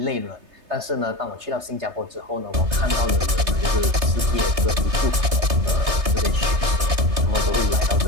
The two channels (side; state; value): left; late; 3.3 ms